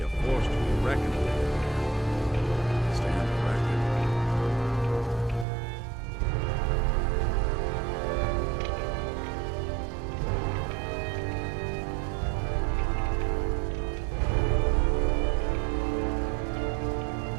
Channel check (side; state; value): left; drops out; at 5.5 s